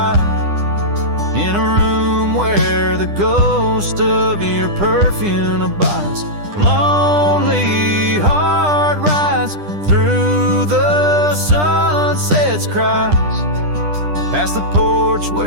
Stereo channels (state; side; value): late; left; 10 ms